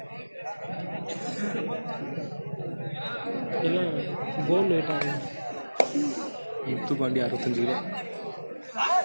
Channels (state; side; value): inverted; both; correlation -1.00